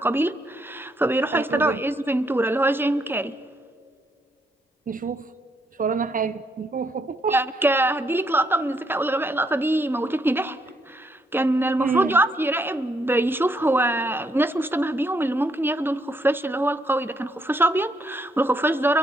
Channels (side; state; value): both; normal; correlation 0.74